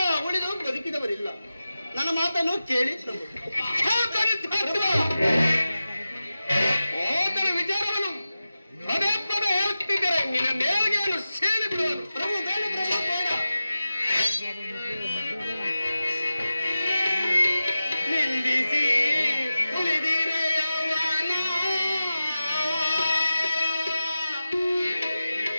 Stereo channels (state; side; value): inverted; both; correlation -0.94